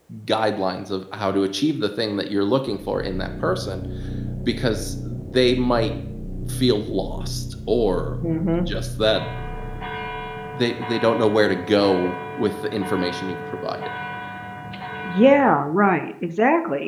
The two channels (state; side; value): identical; both; correlation 1.00